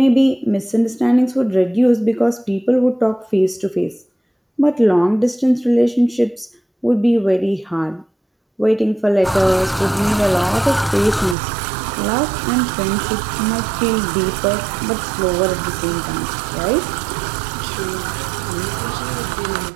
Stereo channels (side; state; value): left; drops out; at 11.4 s